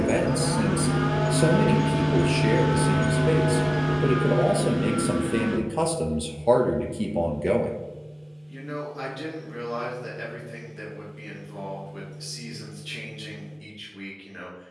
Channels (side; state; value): both; identical; correlation 1.00